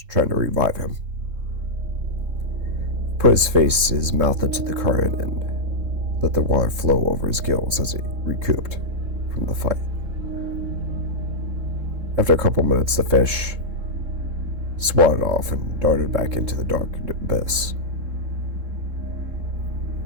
trying to revive him. Put his mouth into the current and let the water flow over his gills as he recouped from the fight. After a couple minutes, the fish swatted off and darted back into the dark abyss.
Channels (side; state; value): left; late; 3.7 ms